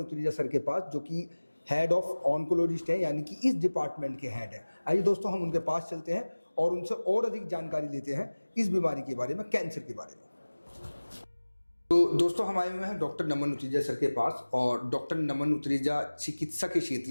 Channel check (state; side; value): inverted; both; correlation -1.00